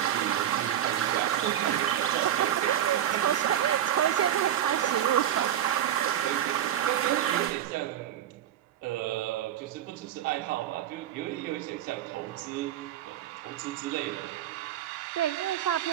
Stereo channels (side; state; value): left; quieter; 11.2 dB